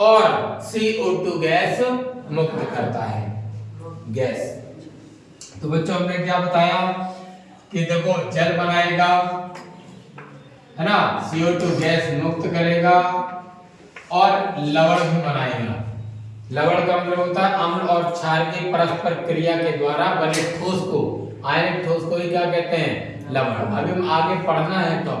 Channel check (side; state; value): both; identical; correlation 1.00